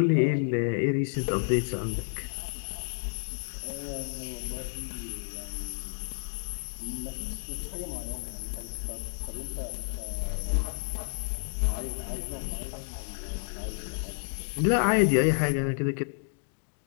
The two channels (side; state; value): right; silent; digital silence